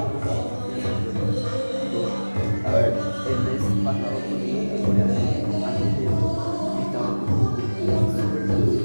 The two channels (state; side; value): inverted; both; correlation -1.00